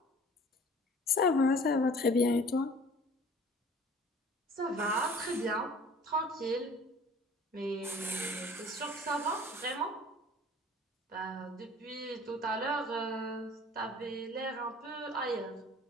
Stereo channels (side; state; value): both; normal; correlation 0.48